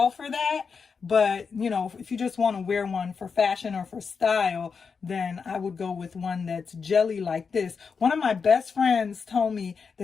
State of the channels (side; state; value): right; quieter; 5.6 dB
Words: for that. But, if you just want to wear one for fashion or for style, then I would go with one that's jelly like this. One of my best friends told me